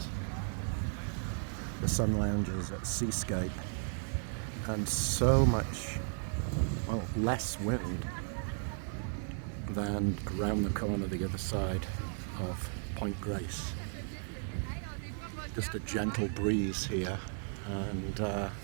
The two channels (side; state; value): left; silent; 54 dB below the other